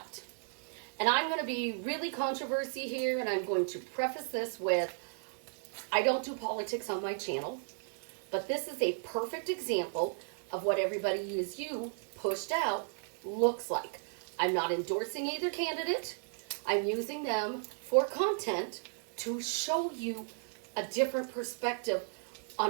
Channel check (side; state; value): left; silent; digital silence